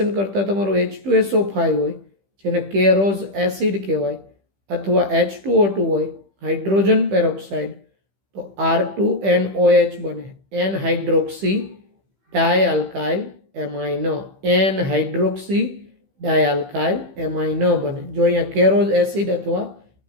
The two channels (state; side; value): late; left; 15 ms